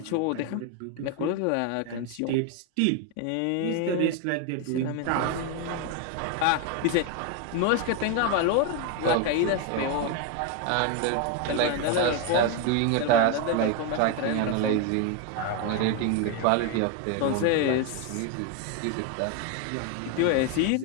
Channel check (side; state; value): both; different; correlation 0.01